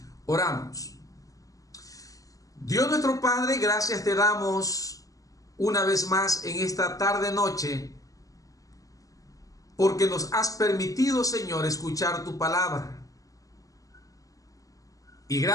Oramos. Dios nuestro Padre, gracias te damos una vez más en esta tarde noche, porque nos has permitido, Señor, escuchar tu palabra. Y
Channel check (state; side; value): late; right; 0.17 ms